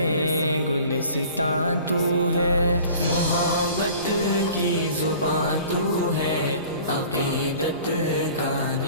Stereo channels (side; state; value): both; inverted; correlation -0.46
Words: گلستاں تو ہے۔ محبت کی زباں تو ہے، عقیدت کا